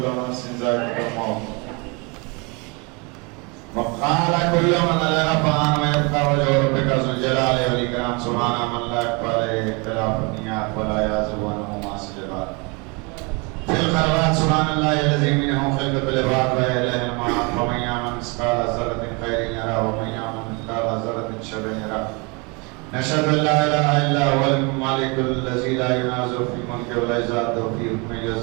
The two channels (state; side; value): quieter; left; 30.1 dB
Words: نفس ذائقة الموت. وقال كل من عليها فان ويبقى وجه ربك ذو الجلال والإكرام. سبحان من لا يخفى عليه اختلاف النيات ولا يعزب عنه معاصي العباد. في الخلوات سبحان الله الذي منه خلقة العباد وإليه المعاد. ومن يعمل مثقال ذرة خيرا يره ومن يعمل مثقال ذرة شر يره. نشهد ان لا اله الا هو الملك الذي لا ينازع في ملكه ولا يزاد في حكمه